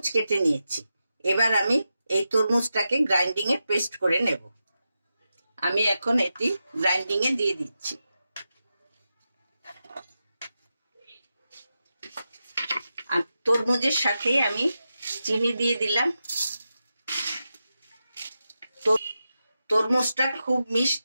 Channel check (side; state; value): both; inverted; correlation -0.90